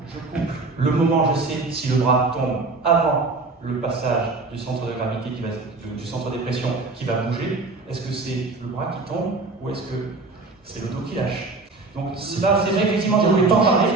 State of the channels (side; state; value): left; quieter; 3.6 dB